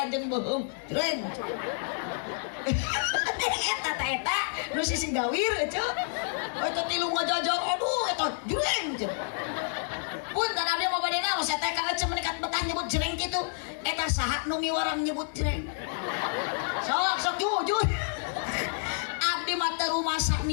bohong jreng. Eta nu sisi gawir ece. Eta tilu ngajajar aduh eta jreng. Punten abdi mau bade naos eta ka ece menikat betah nyebut jreng kitu. Eta saha nu miwarang nyebut jreng. Sok jujur. Abdi mah teu rumah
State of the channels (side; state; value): right; silent; digital silence